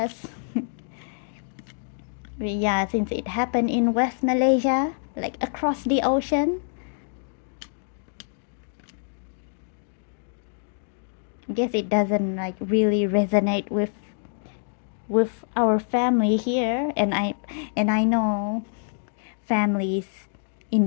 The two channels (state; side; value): silent; right; digital silence